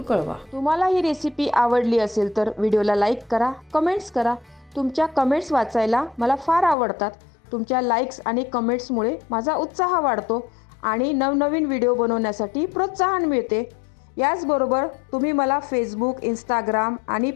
कळवा. तुम्हाला ही रेसिपी आवडली असेल तर व्हिडिओला लाईक करा, कमेंट्स करा. तुमच्या कमेंट्स वाचायला मला फार आवडतात. तुमच्या लाईक्स आणि कमेंट्समुळे माझा उत्साह वाढतो आणि नवनवीन व्हिडिओ बनवण्यासाठी प्रोत्साहन मिळते. याचबरोबर तुम्ही मला फेसबुक, इंस्टाग्राम आणि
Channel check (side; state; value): right; drops out; at 6.8 s